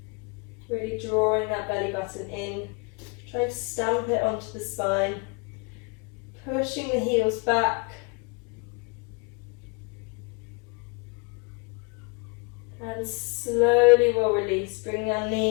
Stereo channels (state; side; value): quieter; right; 30.4 dB